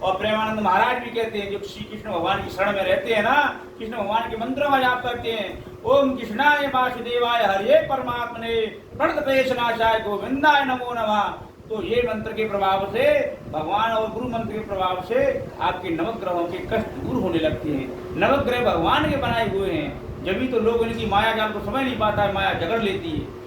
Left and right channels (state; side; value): identical; both; correlation 1.00